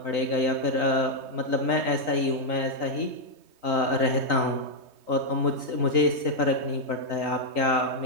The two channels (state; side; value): late; left; 3.2 ms